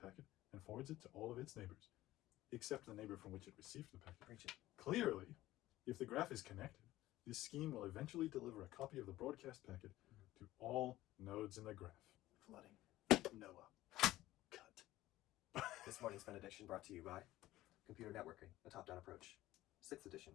and forwards it to all of its neighbors, except the neighbor from which it received the packet. Preach it. Clearly, if the graph is connected, this scheme will eventually deliver a copy of the broadcast packet to all nodes in the graph. Flooding. Noah. Cut. This morning's benediction brought to you by Computer Networking, a top-down approach. 6th edition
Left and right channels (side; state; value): right; quieter; 15.9 dB